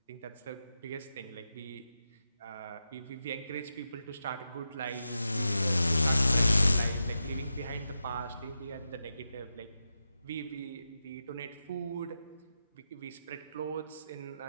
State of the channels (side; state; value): both; inverted; correlation -0.88